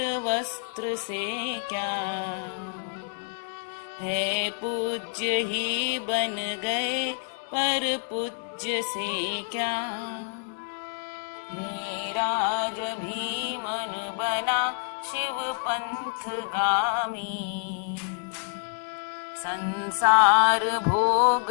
वस्त्र से क्या, है पूज्य ही बन गए पर पूज्य से क्या। मेरा जब भी मन बना शिव पंथ गामी, संसार भोग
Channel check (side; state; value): right; silent; digital silence